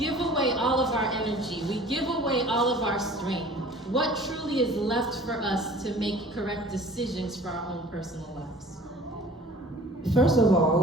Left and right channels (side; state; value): both; normal; correlation 0.47